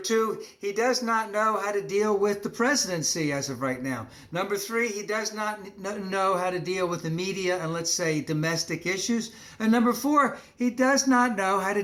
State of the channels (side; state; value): both; identical; correlation 1.00